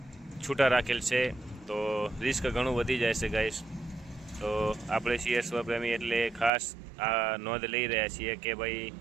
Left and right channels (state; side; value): drops out; left; at 6.5 s